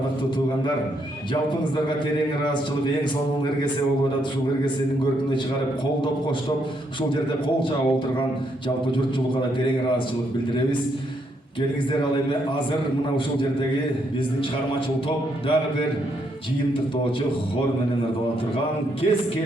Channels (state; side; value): normal; both; correlation 0.75